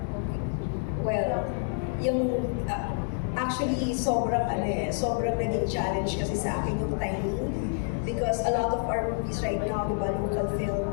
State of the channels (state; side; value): silent; right; digital silence